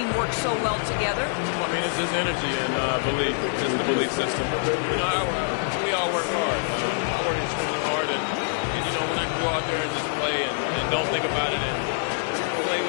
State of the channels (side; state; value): right; silent; digital silence